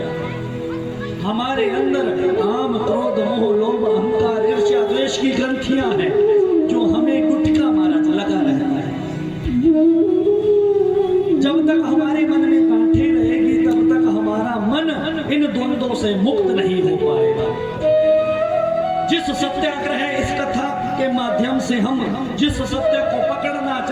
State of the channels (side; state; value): both; identical; correlation 1.00